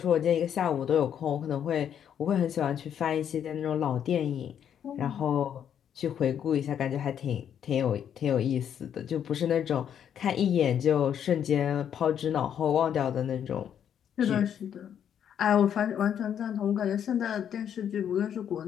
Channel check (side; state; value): right; quieter; 9.0 dB